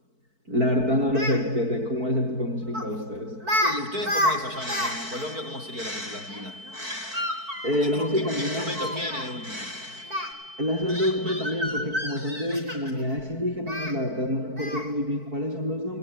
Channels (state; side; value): late; left; 4.5 ms